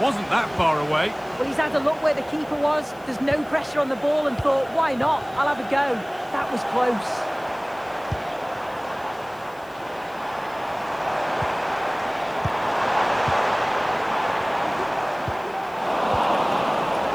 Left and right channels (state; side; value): noise; left; hiss, 26 dB below the sound